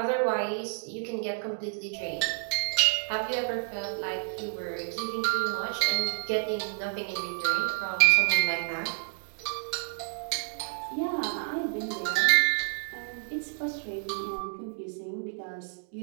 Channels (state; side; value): silent; left; digital silence